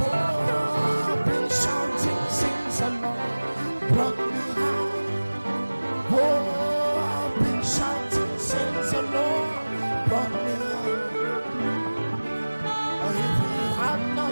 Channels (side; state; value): both; inverted; correlation -1.00